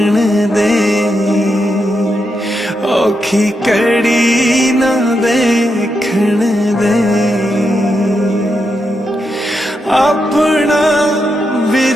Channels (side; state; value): both; normal; correlation 0.84